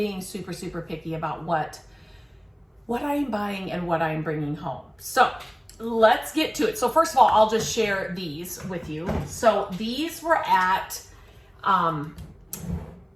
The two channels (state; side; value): identical; both; correlation 1.00